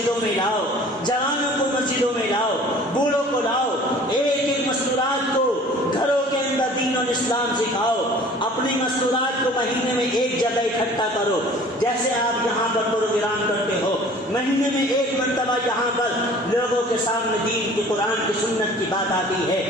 میں لاؤ، جوانوں کو مسجدوں میں لاؤ، بوڑھوں کو لاؤ، ایک ایک مستورات کو گھروں کے اندر دین اور اسلام سکھاؤ، اپنی مستورات کو مہینے میں ایک جگہ اکٹھا کرو، جیسے آپ یہاں پر پروگرام کرتے ہو، مہینے میں ایک مرتبہ یہاں پر لوگوں کے سامنے دین کی، قرآن کی، سنت کی بات آتی ہے،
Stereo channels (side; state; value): both; normal; correlation 0.48